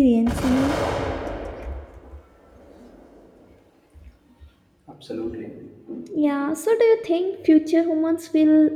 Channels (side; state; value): both; identical; correlation 1.00